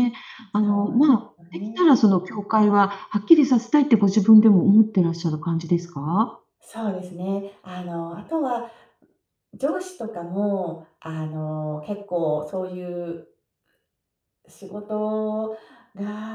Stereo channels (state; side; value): identical; both; correlation 1.00